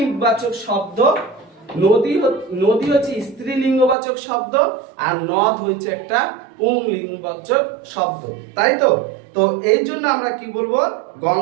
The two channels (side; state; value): left; drops out; at 4.0 s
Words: শব্দ, নদী হচ্ছে স্ত্রীলিঙ্গবাচক শব্দ, আর নদ হচ্ছে একটা পুংলিঙ্গবাচক শব্দ, তাই তো? তো এই জন্য আমরা কি বলবো?